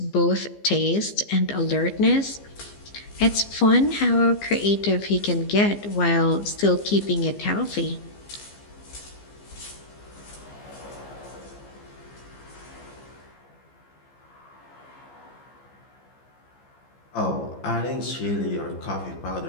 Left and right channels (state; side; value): late; right; 15 ms